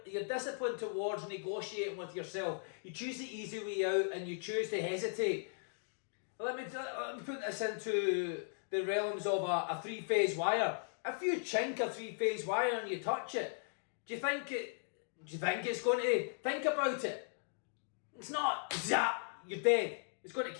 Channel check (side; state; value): right; silent; digital silence